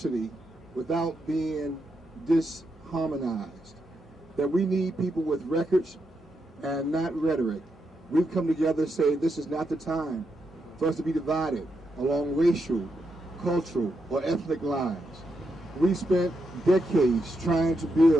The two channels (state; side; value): normal; both; correlation 0.83